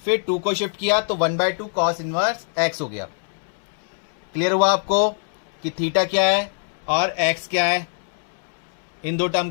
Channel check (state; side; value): silent; right; 63 dB below the other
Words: फिर 2 को शिफ्ट किया तो 1/2 कॉस इनवर्स x हो गया। क्लियर हुआ आपको कि थीटा क्या है और x क्या है, इन दो टर्म